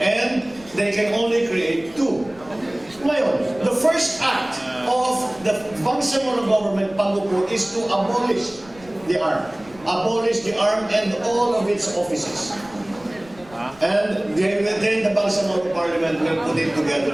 and they can only create two. Ngayon, the first act of the Bangsamoro government, Pangupo, is to abolish the ARM. Abolish the ARM and all of its offices. And then the Bangsamoro Parliament will put it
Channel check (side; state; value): left; noise; rumble, 23 dB below the sound